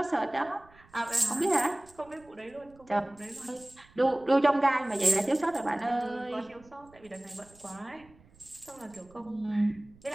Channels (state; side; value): noise; right; rumble, 27 dB below the sound